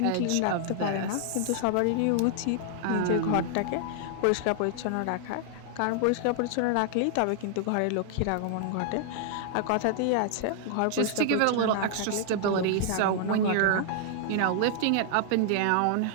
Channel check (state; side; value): different; both; correlation 0.00